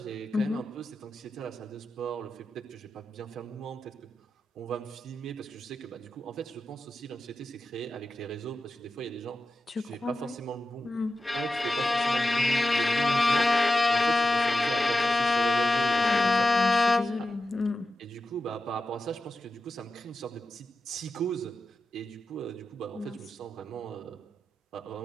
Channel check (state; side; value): normal; both; correlation 0.92